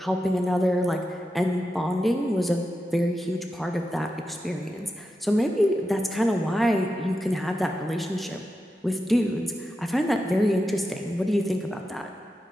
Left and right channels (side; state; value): both; normal; correlation 0.89